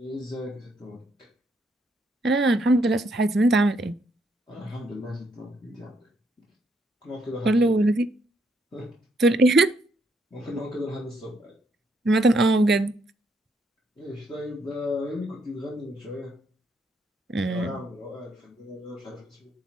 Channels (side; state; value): both; normal; correlation 0.73